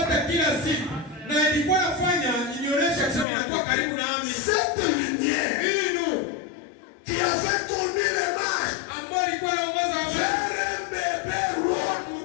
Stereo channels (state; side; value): drops out; right; at 3.2 s